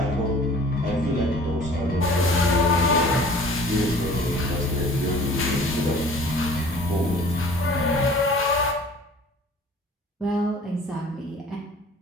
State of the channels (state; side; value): normal; both; correlation 0.48